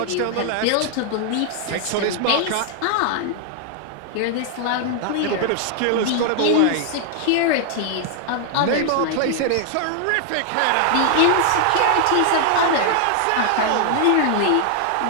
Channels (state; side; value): different; both; correlation 0.00